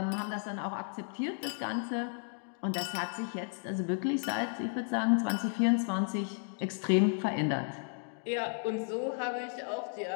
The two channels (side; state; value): right; silent; 55 dB below the other